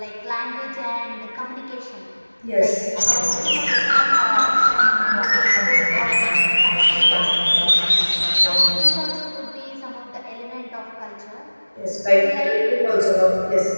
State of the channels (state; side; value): inverted; both; correlation -1.00